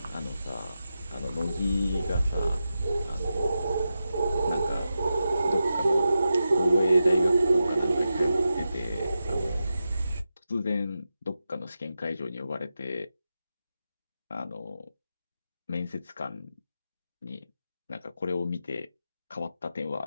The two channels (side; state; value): both; inverted; correlation -0.90